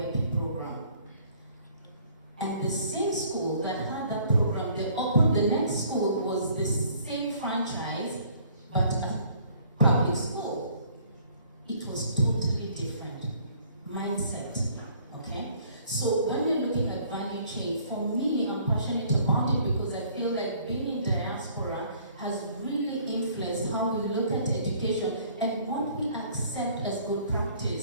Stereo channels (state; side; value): inverted; both; correlation -0.58